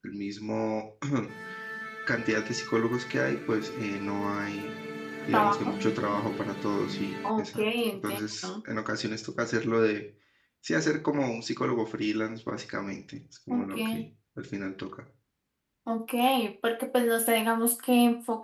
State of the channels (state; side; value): identical; both; correlation 1.00